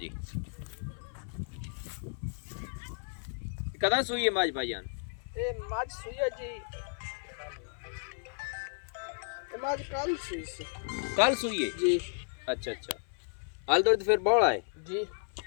कदा सूई है मज भाईजान? ए मज सुई है जी। मज कल सुई से। कल सूई है जी। अच्छा अच्छा। हाल दूध फिर बौड़ा है जी।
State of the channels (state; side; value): silent; right; 56 dB below the other